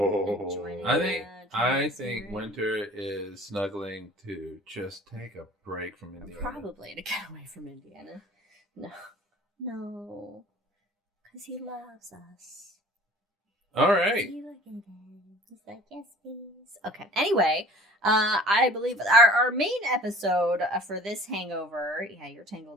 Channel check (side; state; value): both; normal; correlation 0.48